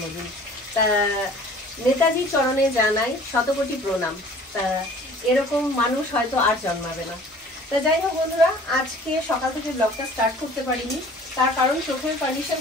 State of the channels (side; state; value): both; normal; correlation 0.49